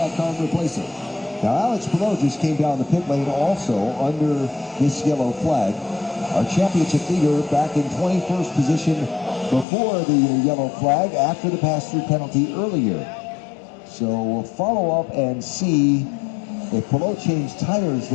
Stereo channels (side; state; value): right; drops out; at 9.7 s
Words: car and replace it. Now, Alex Palou just came down the pit lane also under this yellow flag. Our championship leader back in 21st position before the yellow flag after the pass-through penalty earlier. So we'll follow up and see if Palou changed tires